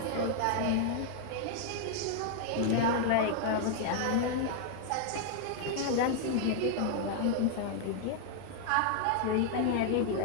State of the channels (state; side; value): different; both; correlation 0.00